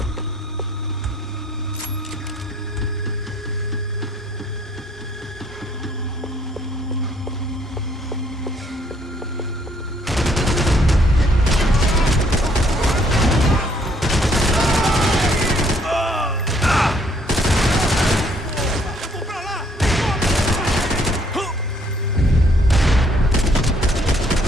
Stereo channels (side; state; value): both; normal; correlation 0.65